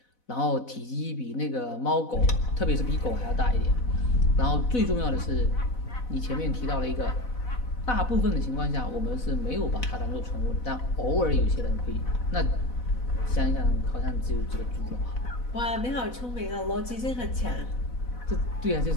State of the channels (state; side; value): late; right; 4.0 ms